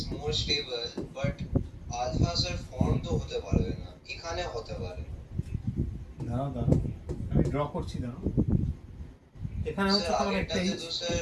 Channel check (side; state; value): both; identical; correlation 1.00